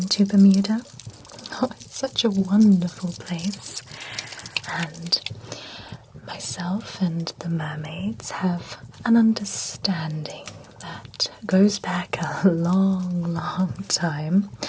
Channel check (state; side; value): identical; both; correlation 1.00